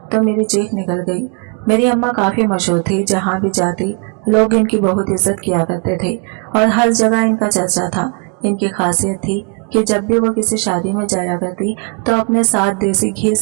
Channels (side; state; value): left; quieter; 36.8 dB